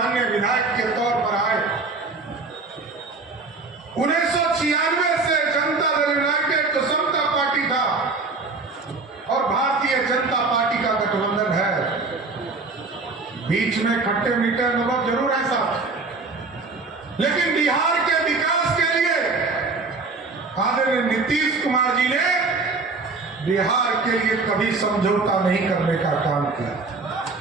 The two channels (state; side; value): quieter; left; 3.9 dB